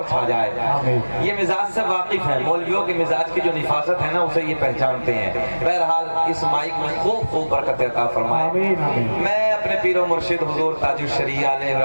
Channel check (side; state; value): both; inverted; correlation -1.00